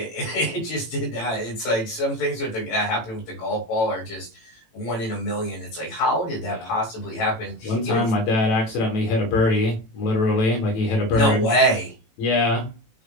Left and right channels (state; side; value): late; right; 18 ms